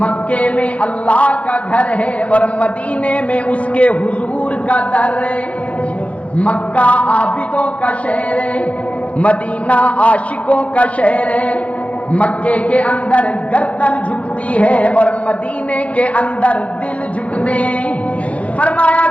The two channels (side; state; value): right; late; 0.064 ms